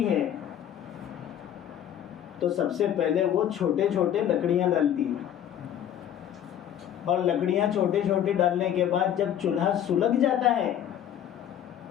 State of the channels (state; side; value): quieter; right; 10.3 dB